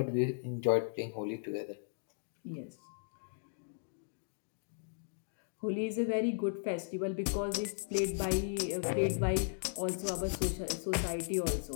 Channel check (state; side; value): silent; right; digital silence